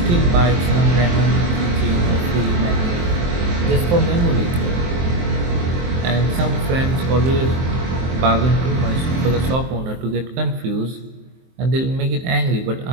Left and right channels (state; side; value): late; left; 23 ms